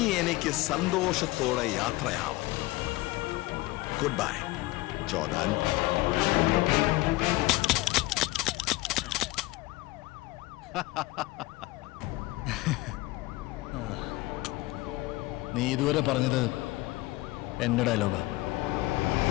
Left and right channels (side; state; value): right; quieter; 19.9 dB